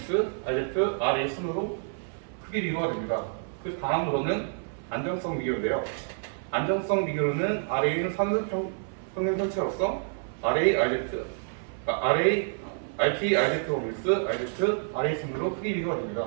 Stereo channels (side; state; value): left; silent; 59 dB below the other